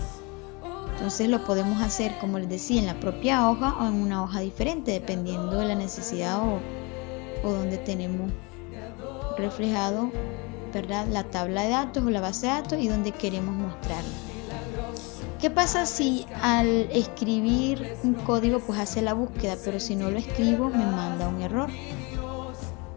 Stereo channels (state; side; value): quieter; right; 28.7 dB